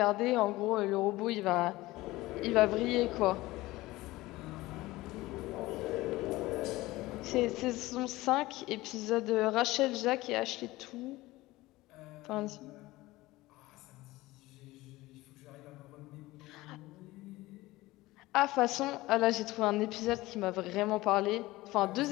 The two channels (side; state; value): right; quieter; 18.9 dB